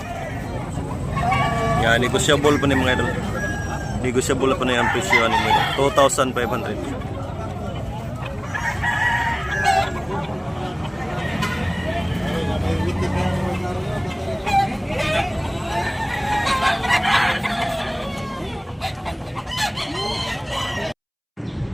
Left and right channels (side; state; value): both; identical; correlation 1.00